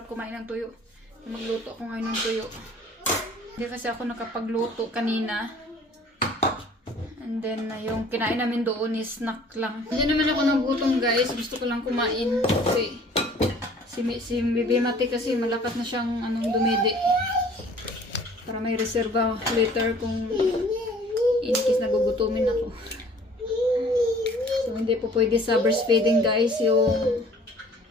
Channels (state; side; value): normal; both; correlation 0.52